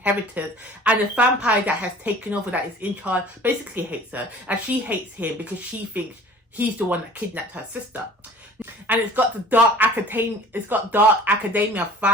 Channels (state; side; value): normal; both; correlation 0.47